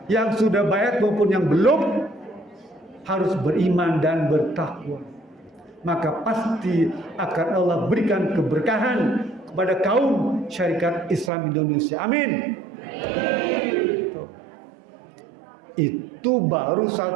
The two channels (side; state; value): left; drops out; at 11.3 s